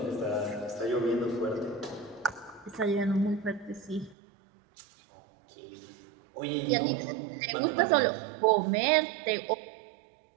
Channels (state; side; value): drops out; left; at 4.2 s